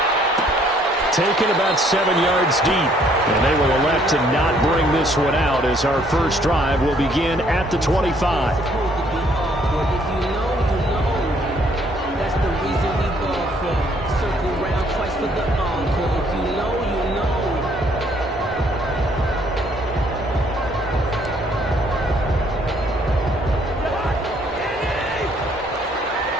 Taken about 7 yards deep, and they will elect to not bring this one out as our first drive will begin at the 25.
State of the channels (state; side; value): normal; both; correlation 0.65